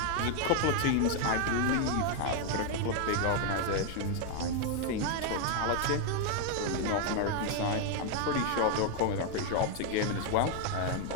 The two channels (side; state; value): both; different; correlation 0.01